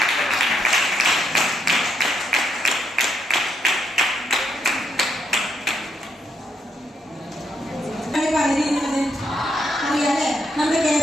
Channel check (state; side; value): normal; both; correlation 0.77